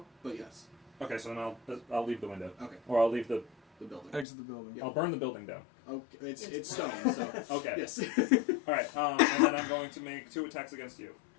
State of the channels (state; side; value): drops out; right; at 4.2 s